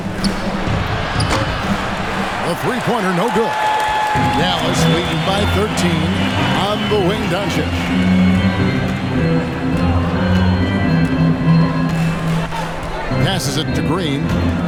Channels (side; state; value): both; identical; correlation 1.00